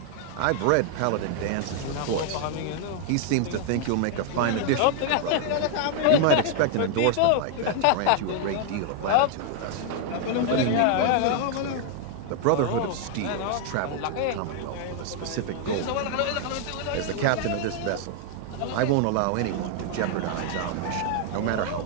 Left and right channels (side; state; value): both; different; correlation 0.00